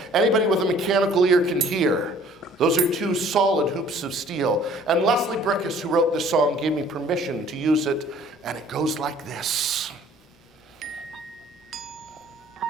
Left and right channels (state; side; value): normal; both; correlation 0.55